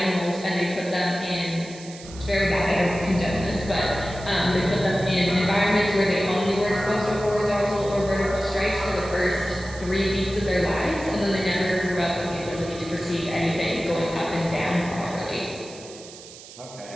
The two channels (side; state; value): right; noise; hiss, 17 dB below the sound